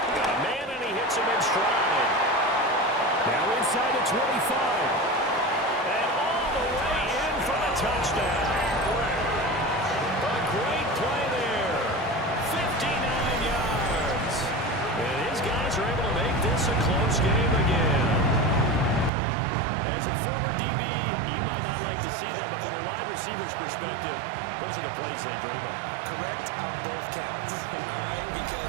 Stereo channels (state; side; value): drops out; left; at 19.1 s